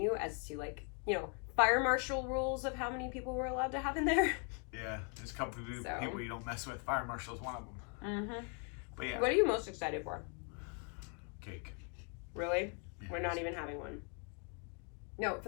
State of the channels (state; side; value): quieter; right; 38.2 dB